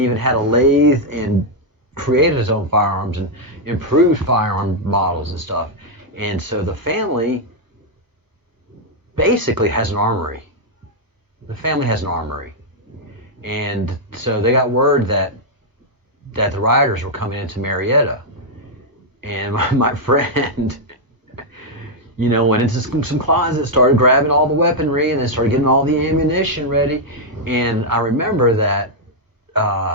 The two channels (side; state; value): left; late; 1.0 ms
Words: had a lathe and created his own firearms and improved firearm models and stuff. And so the family basically has an armory. The family has an armory. And so they got word that the rioters were coming into Marietta. And my friend, you know, went into some closets, started grabbing all the weaponry, and then started getting all the ammunition ready. And I remember that